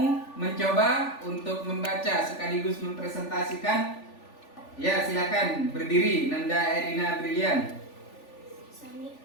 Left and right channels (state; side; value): late; right; 3.4 ms